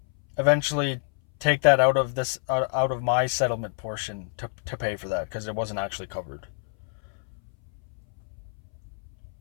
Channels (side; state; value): right; silent; 60 dB below the other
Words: eventually take that out of my settlement portion to pay for that, because it wasn't actually covered.